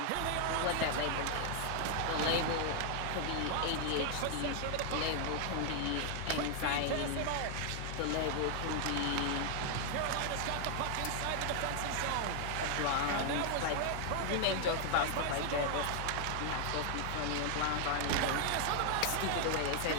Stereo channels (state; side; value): different; both; correlation 0.00